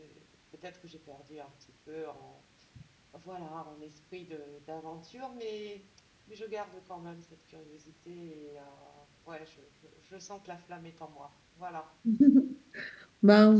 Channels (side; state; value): both; identical; correlation 1.00